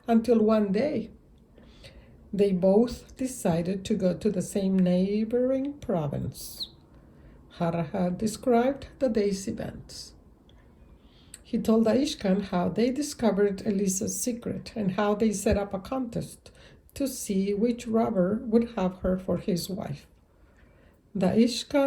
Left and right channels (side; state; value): both; identical; correlation 1.00